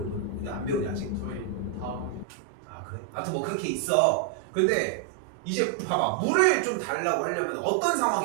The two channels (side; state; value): left; drops out; at 2.2 s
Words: 안 배우냐 아직? 저희 다음 학기. 아 그래? 아무튼 뭐 그렇게 있어. 근데 이제 봐봐 물을 좀 달라고 하려면 어떤